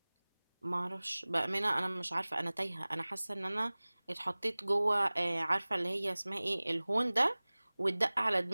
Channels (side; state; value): both; inverted; correlation -1.00